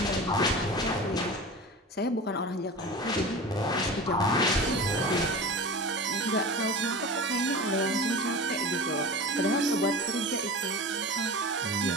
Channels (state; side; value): normal; both; correlation 0.32